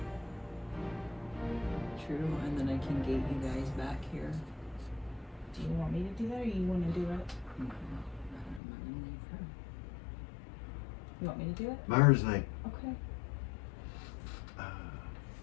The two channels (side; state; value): right; drops out; at 8.6 s